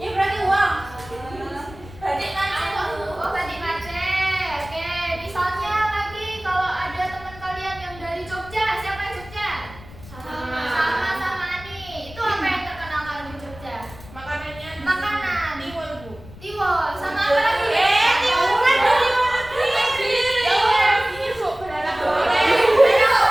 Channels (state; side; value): noise; left; rumble, 18 dB below the sound